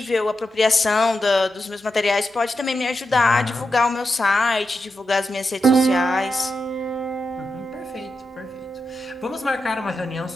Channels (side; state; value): both; normal; correlation 0.88